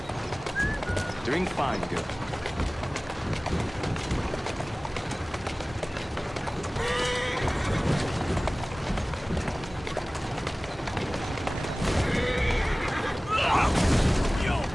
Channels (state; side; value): normal; both; correlation 0.98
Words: Doing fine, girl.